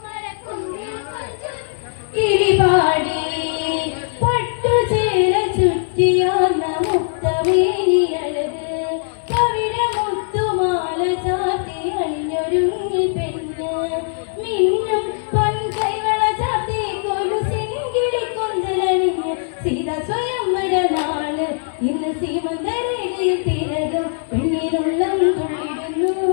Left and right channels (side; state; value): right; silent; 60 dB below the other